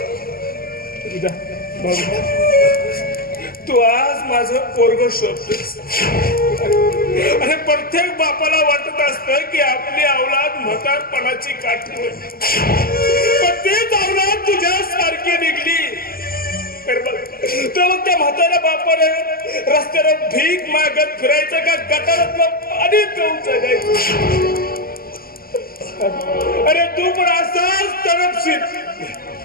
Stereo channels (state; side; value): late; right; 0.43 ms